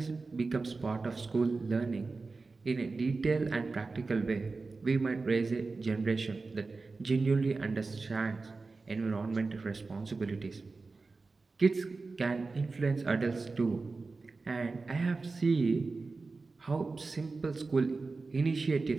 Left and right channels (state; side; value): quieter; left; 3.9 dB